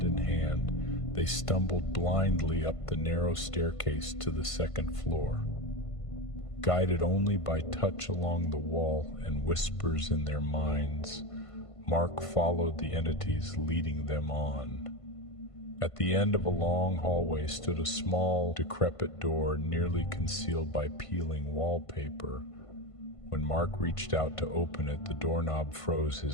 in hand, they stumbled blindly up the narrow staircase to the second floor. Guided only by touch along the wall and whispers in their minds, Mark followed the entities leading them on. At the end of a long hallway stood a small, decrepit door nearly concealed by peeling wallpaper. When Mark reached out to open it, the doorknob froze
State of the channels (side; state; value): right; late; 1.5 ms